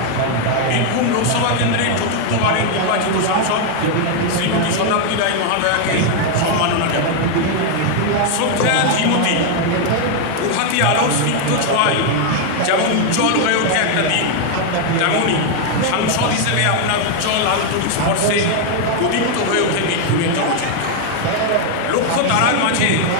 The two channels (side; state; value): both; different; correlation 0.00